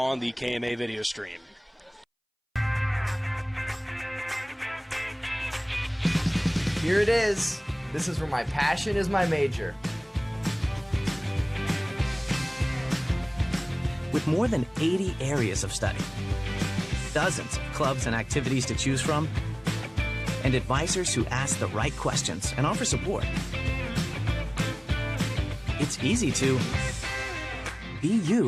the KMA video stream. Here it is. This is where my passion is my major. With more than 80 areas of study, dozens of clubs and activities to choose from, and advisors who ask the right questions and offer support, it's easy to be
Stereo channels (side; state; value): both; identical; correlation 1.00